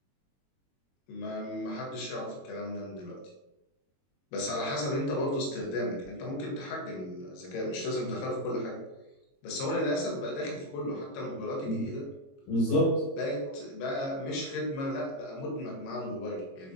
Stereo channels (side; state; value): right; late; 22 ms